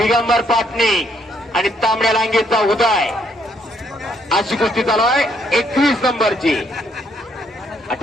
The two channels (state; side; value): normal; both; correlation 0.71